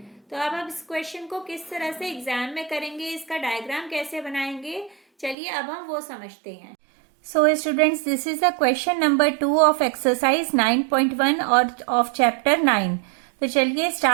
तो अब हम इस क्वेश्चन को किस तरह से एग्जाम में करेंगे, इसका डायग्राम कैसे बनाएंगे, चलिए अब हम वो समझते हैं। So students, this is the question number 2 of exercise 9.1 और ऑफ चैप्टर 9। तो चलिए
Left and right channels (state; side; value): drops out; left; at 5.4 s